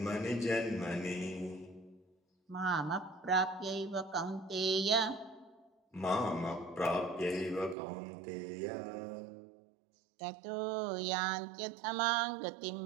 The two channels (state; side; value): drops out; left; at 7.8 s